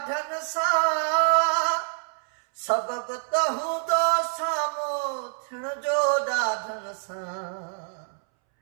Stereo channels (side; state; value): left; silent; 61 dB below the other